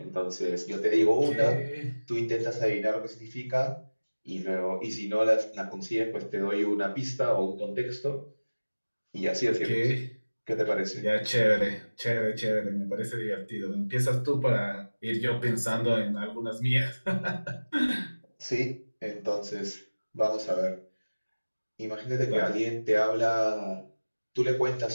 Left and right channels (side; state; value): both; inverted; correlation -1.00